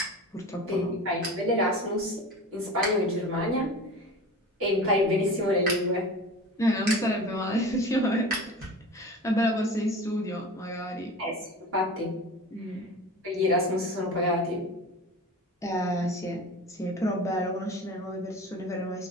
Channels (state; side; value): normal; both; correlation 0.35